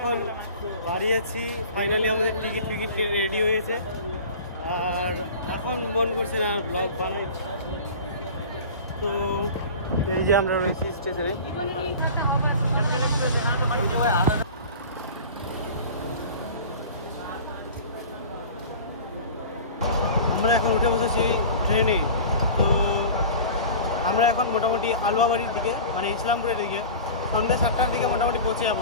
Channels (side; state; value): both; inverted; correlation -0.38